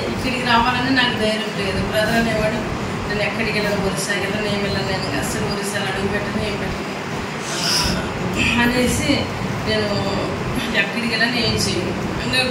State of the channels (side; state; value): both; identical; correlation 1.00